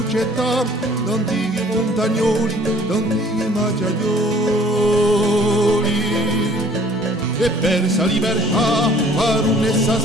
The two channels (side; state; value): both; normal; correlation 0.54